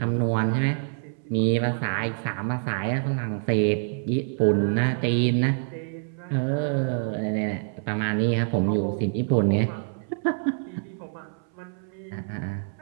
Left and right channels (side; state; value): left; silent; 61 dB below the other